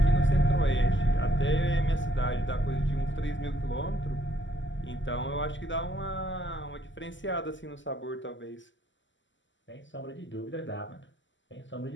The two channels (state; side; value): late; right; 0.54 ms